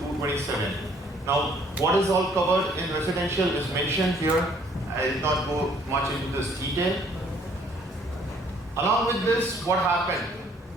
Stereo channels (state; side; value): normal; both; correlation 0.61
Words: Now what is all covered in residential is mentioned here. I will not go much into this detail. Along with this, what happened?